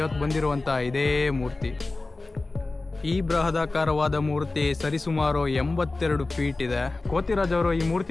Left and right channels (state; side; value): quieter; right; 3.3 dB